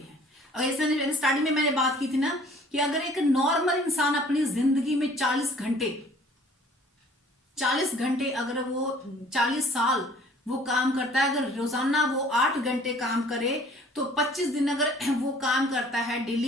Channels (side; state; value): both; normal; correlation 0.54